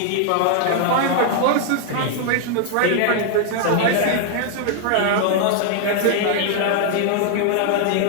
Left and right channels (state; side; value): different; both; correlation 0.00